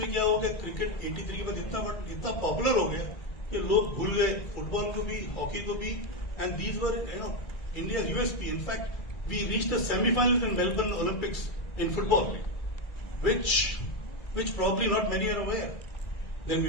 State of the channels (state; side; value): late; right; 2.3 ms